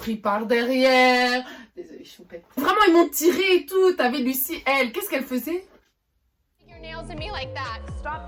par derrière. Désolée, choupette. Vraiment, ils m'ont tiré et tout. T'avais Lucie, elle, qu'est-ce qu'elle faisait? Your nails at me like that.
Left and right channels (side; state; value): both; identical; correlation 1.00